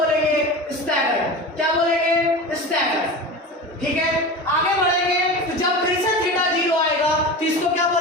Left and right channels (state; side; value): normal; both; correlation 0.30